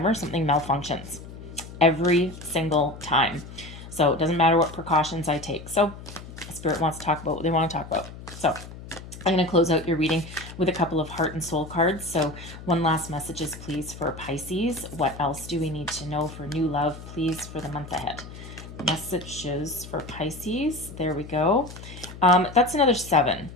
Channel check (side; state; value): left; noise; hum, 14 dB below the sound